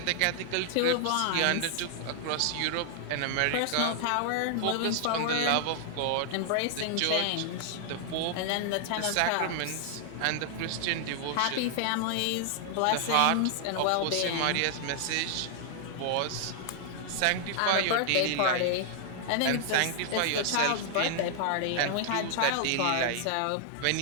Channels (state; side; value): different; both; correlation 0.00